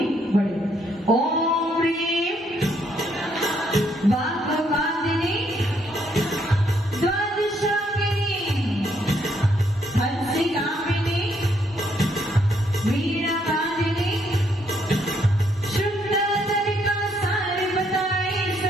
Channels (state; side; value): normal; both; correlation 0.72